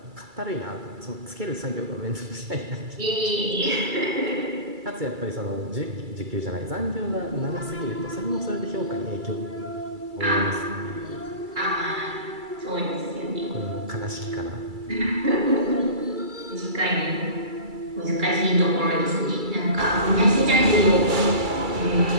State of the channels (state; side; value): late; left; 2.3 ms